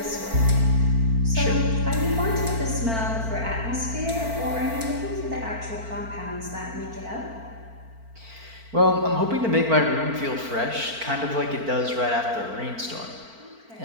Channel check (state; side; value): late; left; 4.4 ms